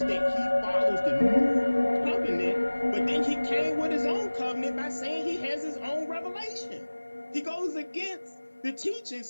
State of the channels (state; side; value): inverted; both; correlation -1.00